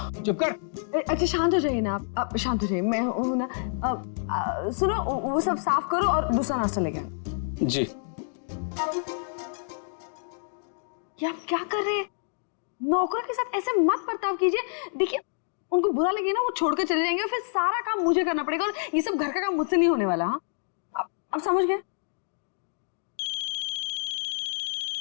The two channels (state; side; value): silent; right; digital silence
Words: चुप कर। अच्छा शांत हो जाइए ना आप शांत हो जाइए। मैं हूं ना। सुनो, वो सब साफ करो और दूसरा नाश्ता लेके आना। जी। ये आप क्या कर रहे हैं? नौकरों के साथ ऐसे मत बर्ताव कीजिए। देखिए, उनको बुरा लगे ना, वो छोड़कर चले जाएंगे और फिर सारा काम मुझे करना पड़ेगा और ये सब घर का काम मुझसे नहीं होने वाला। हाँ, अब समझ गए?